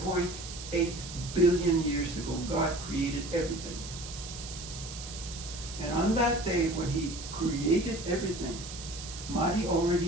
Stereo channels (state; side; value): noise; right; hiss, 11 dB below the sound